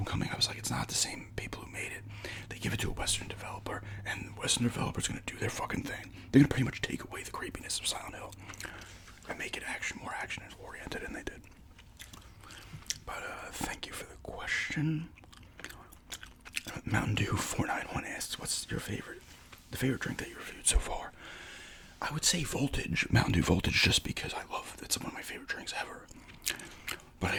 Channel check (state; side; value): identical; both; correlation 1.00